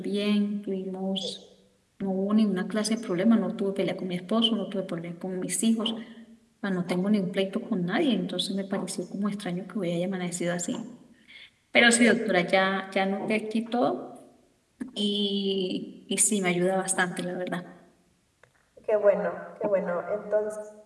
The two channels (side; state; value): both; identical; correlation 1.00